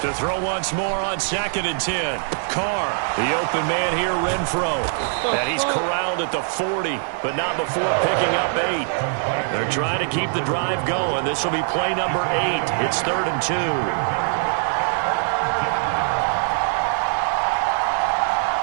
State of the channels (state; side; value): silent; left; 61 dB below the other